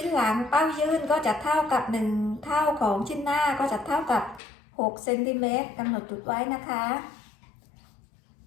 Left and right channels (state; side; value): drops out; right; at 4.4 s